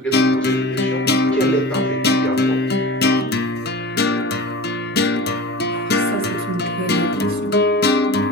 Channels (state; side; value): normal; both; correlation 0.35